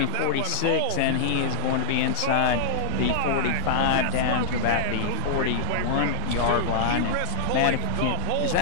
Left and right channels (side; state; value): both; different; correlation -0.01